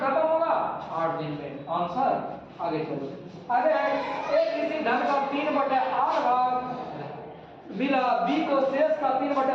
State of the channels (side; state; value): both; identical; correlation 1.00